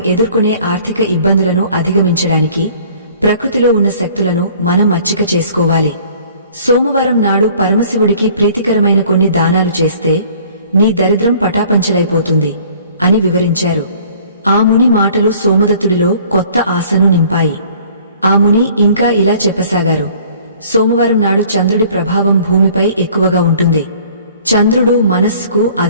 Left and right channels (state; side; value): inverted; both; correlation -0.53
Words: ఎదుర్కొనే ఆర్థిక ఇబ్బందులను అధిగమించడానికి ప్రకృతిలో ఉన్న శక్తులను మనం మచ్చిక చేసుకోవాలి. సోమవారం నాడు పరమశివుడికి ప్రీతికరమైన కొన్ని దానాలు చేస్తే నీ దరిద్రం పటాపంచలైపోతుంది అని వివరించారు. ఆ ముని మాటలు సోమదత్తుడిలో కొత్త ఆశను నింపాయి. ఆ ముని ఇంకా ఇలా చెప్పసాగారు, సోమవారం నాడు చంద్రుడి ప్రభావం భూమిపై ఎక్కువగా ఉంటుంది. చంద్రుడు మనస్సుకు